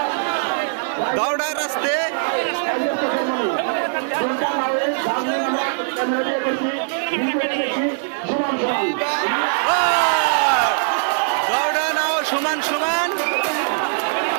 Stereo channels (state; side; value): silent; left; digital silence